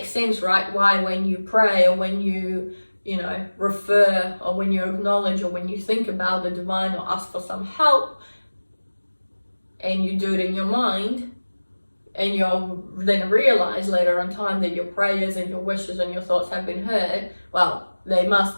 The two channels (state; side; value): inverted; both; correlation -1.00